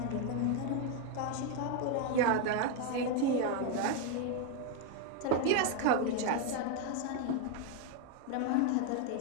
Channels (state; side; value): different; both; correlation 0.01